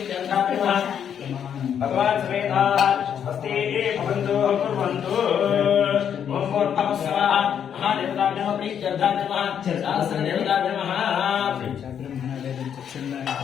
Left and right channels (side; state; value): right; quieter; 8.5 dB